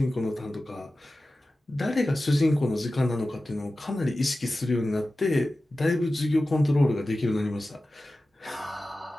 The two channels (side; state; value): both; normal; correlation 0.95